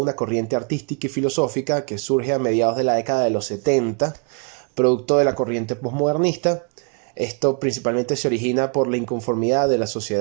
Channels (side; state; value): left; quieter; 39.2 dB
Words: corriente artística y filosófica que surge a mediados de la década de los 70, producto de la corriente postmodernista. Esto principalmente se origina por la inconformidad de la